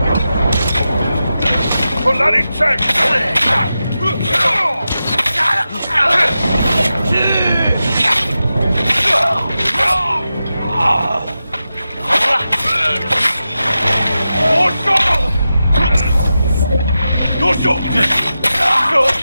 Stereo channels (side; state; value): both; inverted; correlation -0.91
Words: For that in check!